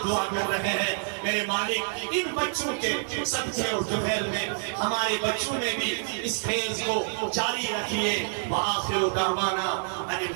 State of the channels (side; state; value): left; silent; 60 dB below the other